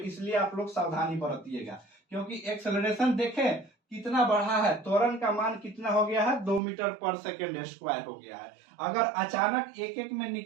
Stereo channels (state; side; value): drops out; left; at 6.6 s